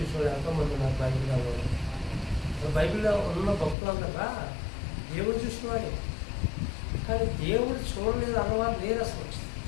ఎంతోమంది నాకు బైబిల్లో బైబిల్లో ఉన్న భక్తులందరా దేవుడు చూసినవాడే, కానీ దేవుడు చూడలేదు అన్నవారు లేరు అసలు.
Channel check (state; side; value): drops out; right; at 3.8 s